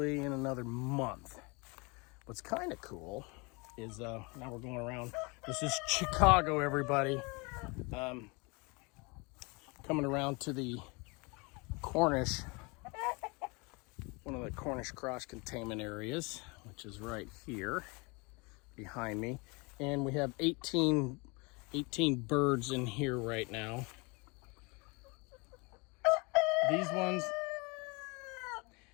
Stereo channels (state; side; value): quieter; right; 28.6 dB